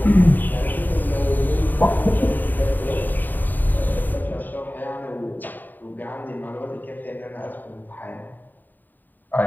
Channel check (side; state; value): right; late; 0.088 ms